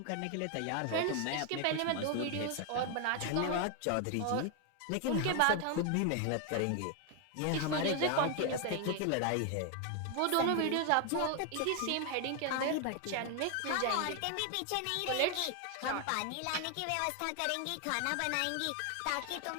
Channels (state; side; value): different; both; correlation 0.01